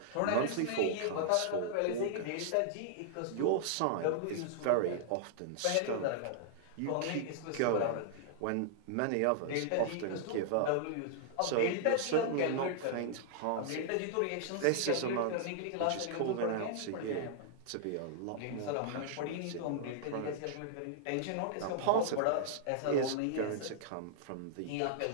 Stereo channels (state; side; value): different; both; correlation -0.01